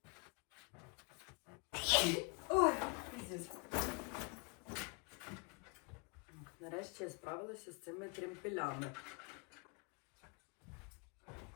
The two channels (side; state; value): right; quieter; 30.9 dB